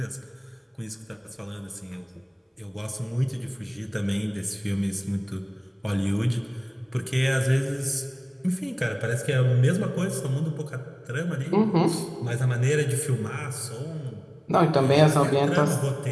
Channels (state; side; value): identical; both; correlation 1.00